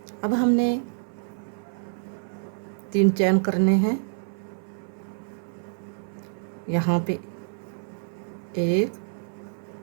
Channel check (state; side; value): silent; left; 60 dB below the other